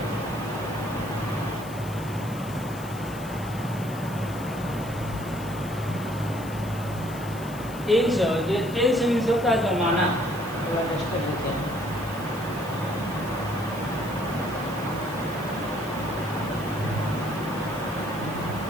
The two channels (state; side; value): noise; left; hiss, 17 dB below the sound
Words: टेंस मीन्स होता है जमाना। थोड़ा टेस्ट कर लेते हैं।